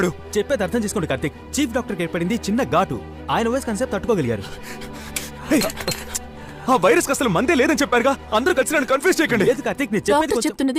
చెప్పేది అర్థం చేసుకోండి కార్తీక్. చీఫ్ డాక్టర్కి ఏర్పడింది చిన్న ఘాటు. ఆయన వయసు కన్సెప్ట్ తట్టుకోగలిగారు. ఆ వైరస్ అసలు మందే లేదని చెప్పారుగా. అందరూ కలిసి నన్ను కన్ఫ్యూజ్ చేయకండి. లేదు కార్తీక్, నేను చెప్పేది డాక్టర్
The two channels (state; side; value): identical; both; correlation 1.00